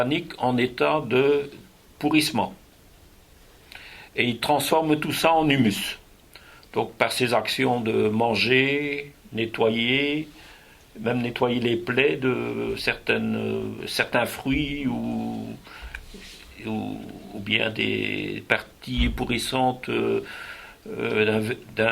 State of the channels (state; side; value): identical; both; correlation 1.00